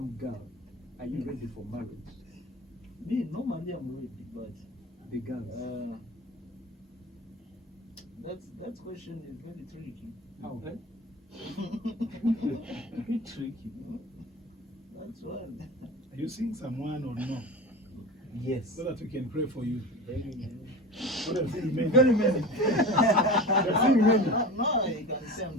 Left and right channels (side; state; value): both; normal; correlation 0.32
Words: girl? Are you ready for marriage? Me, normally I'm ready, but The girls. that question is very tricky. How? Very tricky. That's why. Are you seeing someone or no? Yes. So that we can pray for you. Very many. What are you seeing many? Very many. You're seeing many. No, you can say